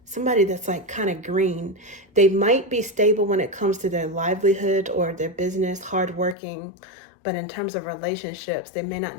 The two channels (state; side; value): drops out; right; at 6.4 s